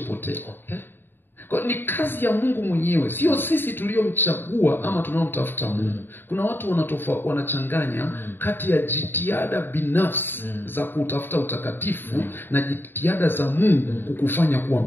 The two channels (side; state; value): right; late; 0.099 ms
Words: Kwa ni kazi ya Mungu mwenyewe, sio sisi tuliomchagua ama tunaomtafuta Mungu. Kuna watu wanachanganya kati ya jitihada binafsi za kutafuta utakatifu na jitihada za Mungu kukufanya kuwa